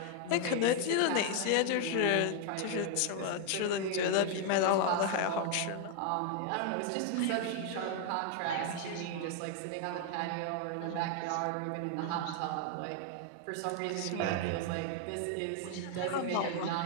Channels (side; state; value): both; different; correlation 0.00